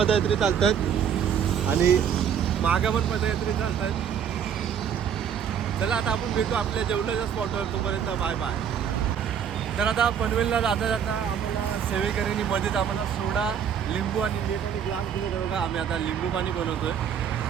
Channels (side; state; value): left; quieter; 8.1 dB